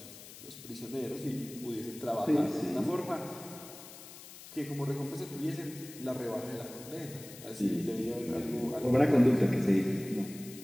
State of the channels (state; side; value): noise; left; hiss, 16 dB below the sound